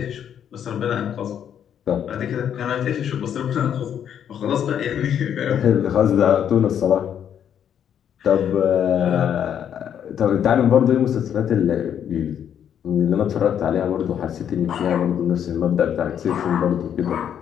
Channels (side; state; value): right; quieter; 9.1 dB